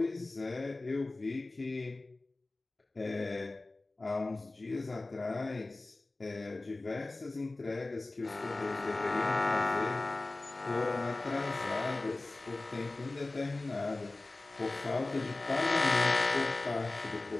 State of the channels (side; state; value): right; quieter; 3.1 dB